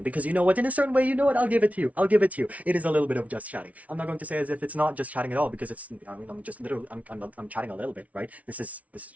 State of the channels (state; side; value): late; left; 0.068 ms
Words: because you know what? In a certain way, you know what? I'll give it to you. I'll give it to you. It is a little bit of just chatting. I'm not going to say as if it's not just chatting at all because it's. I mean, I'm just literally. I'm chatting a little bit, right? This is